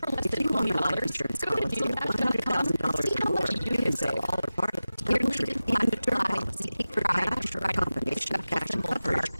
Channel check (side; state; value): both; inverted; correlation -0.96